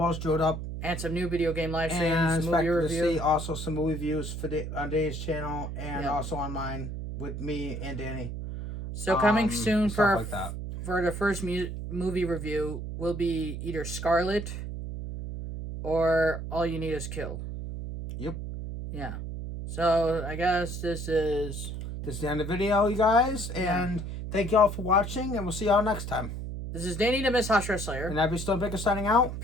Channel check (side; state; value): right; noise; hum, 6 dB below the sound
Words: drew up. And some new video game live streams, and movie review. To see also some movie reviews for on Danny's channel and also on mine with me and Danny. So coming soon for like that. For the first movie review will be either Scarlet or All You Need Is Kill. Yep. Yeah. So I guess this is the end of the video, you guys. And thank you all for watching, and we'll see y'all next time. This is Danny the Miss Hashira Slayer. And I'll be Stone Baker signing out.